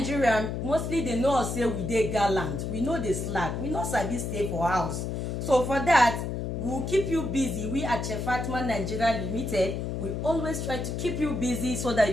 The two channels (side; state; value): left; noise; hum, 3 dB below the sound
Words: mostly dey know us say we dey gallant, we no dey slack, we no sabi stay for house. So for that, we will keep you busy. We at Chef Fatima Nigeria Limited, we always try to keep you busy so that